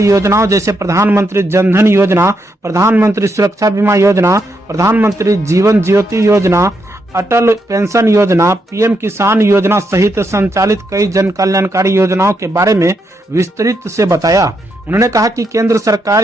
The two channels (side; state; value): both; normal; correlation 0.80